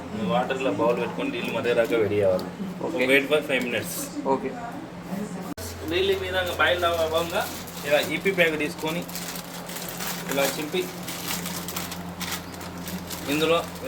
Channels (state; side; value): identical; both; correlation 1.00